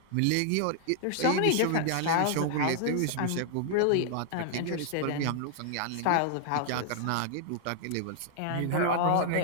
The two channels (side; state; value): both; different; correlation 0.00